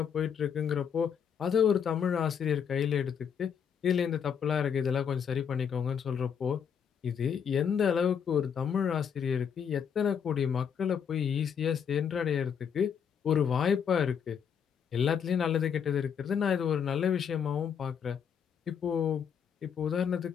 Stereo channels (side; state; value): right; quieter; 7.5 dB